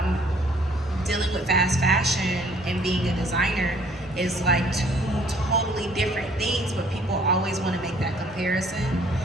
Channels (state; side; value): normal; both; correlation 0.59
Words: dealing with fast fashion and being a designer is like two totally different things, but people always want to make that comparison.